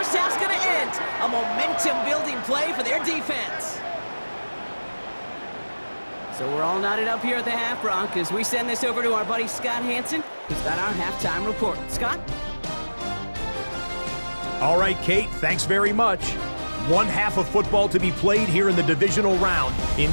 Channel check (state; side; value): inverted; both; correlation -1.00